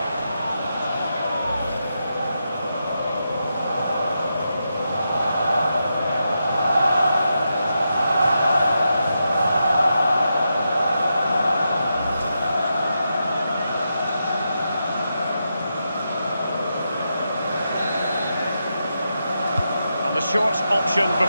And the short option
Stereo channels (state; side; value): inverted; both; correlation -0.86